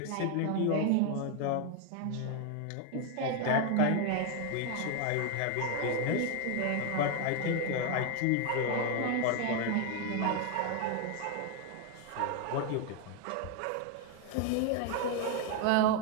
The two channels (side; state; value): both; different; correlation 0.01